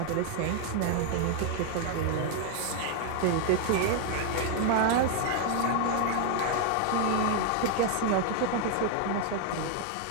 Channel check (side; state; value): both; different; correlation 0.00